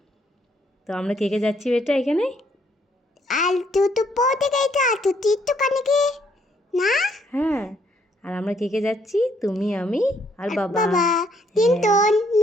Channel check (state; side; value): normal; both; correlation 0.69